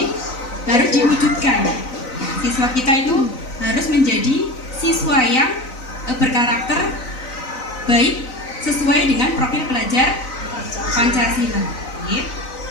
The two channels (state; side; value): late; right; 4.0 ms